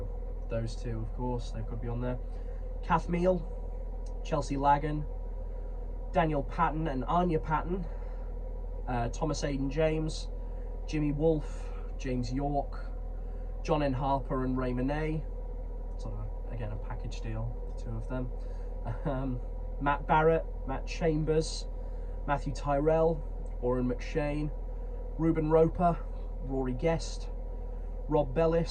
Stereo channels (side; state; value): both; identical; correlation 1.00